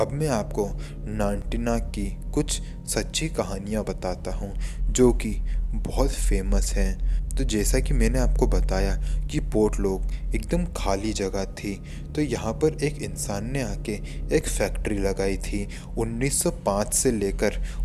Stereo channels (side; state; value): both; identical; correlation 1.00